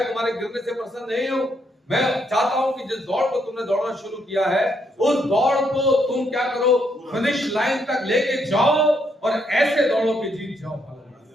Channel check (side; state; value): both; normal; correlation 0.75